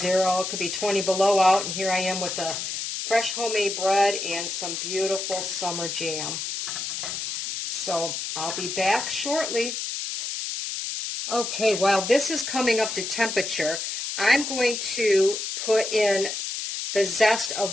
It could be 20 below out, and here I am with the fresh homemade bread and some beautiful summer jam. So I'll be back shortly. Okay, while this is coming up to temperature, I'm going to put in the zest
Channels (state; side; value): noise; left; hiss, 4 dB below the sound